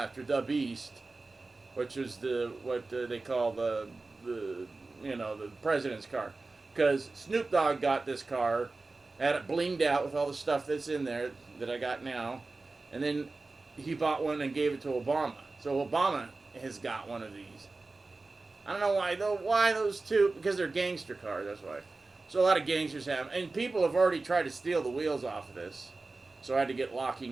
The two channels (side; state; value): left; quieter; 3.5 dB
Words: the Beast, which is what they call the president's car. Because Snoop Dogg got this car, had it blinged out with all the stuff that's in there that I got now, and then he bought one and gave it to Obama. So Obama has got one of these. I don't know why though. Why those two? Because they're gangster cars. That's why. So a lot of gangsters have, and people have already tried to steal the wheels off of this. So I had to get